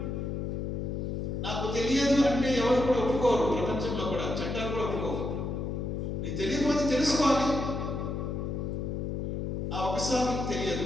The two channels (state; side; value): noise; left; hum, 2 dB below the sound